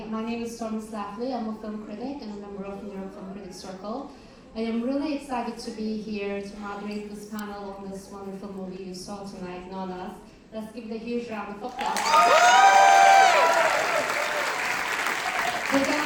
My name is Stormy Slafley. I'm a film critic and a member of the New York Film Critics Circle. I am really excited to be here to moderate this panel on this wonderful movie you saw tonight, Nonnas. Let's give it a huge round of applause.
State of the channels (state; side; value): identical; both; correlation 1.00